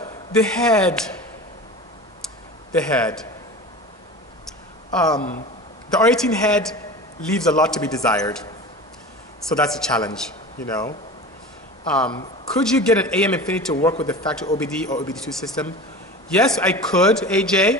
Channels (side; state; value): both; normal; correlation 0.33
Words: the head. The R18 head leaves a lot to be desired. So that's a challenge, you know. Could you get an AM Infinity to work with the factory OBD or OBD2 system? Yes, I could, AJ,